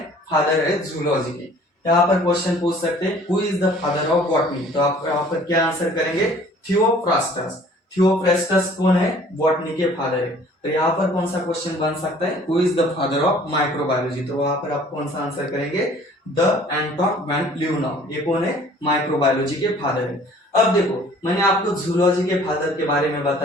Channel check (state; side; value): normal; both; correlation 0.53